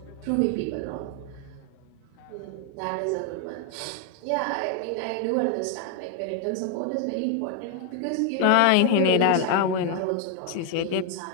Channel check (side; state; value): both; different; correlation 0.00